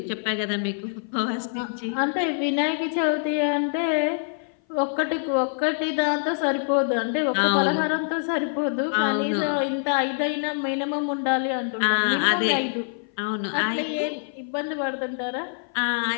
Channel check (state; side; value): silent; right; 57 dB below the other